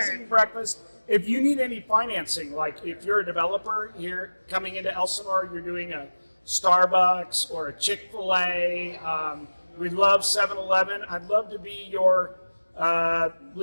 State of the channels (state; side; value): inverted; both; correlation -1.00